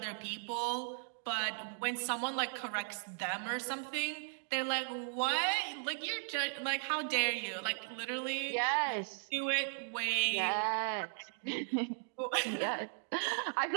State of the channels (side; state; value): left; silent; digital silence